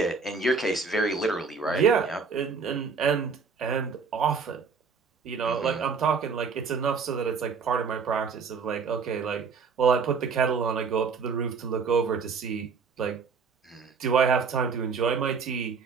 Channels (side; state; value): left; quieter; 5.4 dB